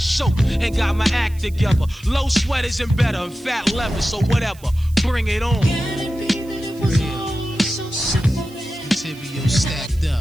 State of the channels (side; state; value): right; noise; hiss, 24 dB below the sound